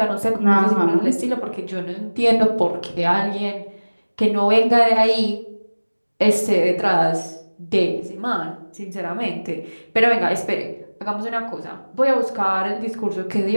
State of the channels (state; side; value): inverted; both; correlation -1.00